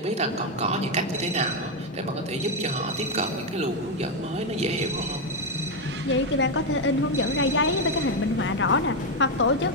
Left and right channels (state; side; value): normal; both; correlation 0.04